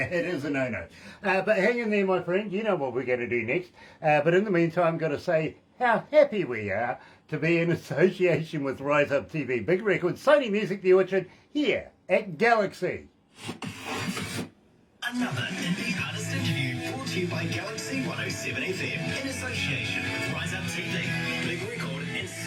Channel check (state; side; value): identical; both; correlation 1.00